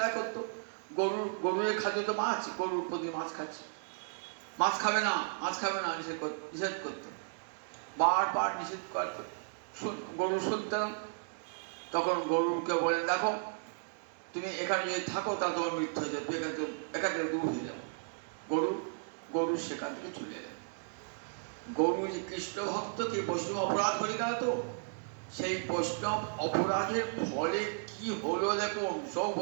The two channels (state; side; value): silent; left; 55 dB below the other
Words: করতো, গরুর খাদ্য তো মাছ, গরুর প্রতি মাছ খাচ্ছে, মাছ খাবে না মাছ খাবে না নিষেধ করতো, বারবার নিষেধ করতো। গরু শুনতে না, তখন গরুকে বলেন, দেখো তুমি এখানে যদি থাকো তা তোমার মৃত্যু হয়ে যাবে, এখান থেকে দূর হয়ে যাবে। গরু সেখান থেকে চলে এলেন। গরু যে কৃষ্ণ ভক্তকে বৈষ্ণব অপরাধ করে গেল, তো সেই বৈষ্ণব অপরাধের ফলে কি হলো দেখুন, সব